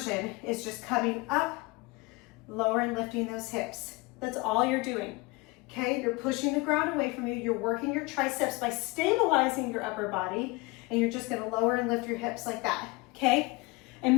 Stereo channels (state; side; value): quieter; right; 24.7 dB